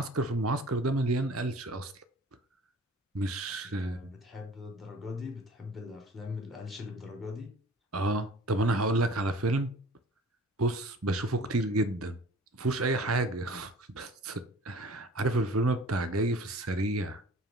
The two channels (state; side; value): normal; both; correlation 0.46